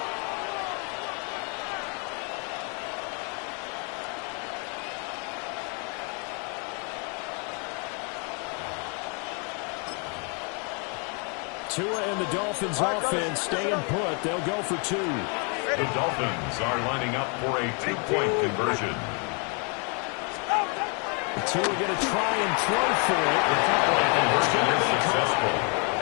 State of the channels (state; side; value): quieter; right; 36.2 dB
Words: Tua and the Dolphins offense staying put. They'll go for 2. The Dolphins are lining up for a 2-point conversion. Tua going to try and throw for it. And it's going to be successful.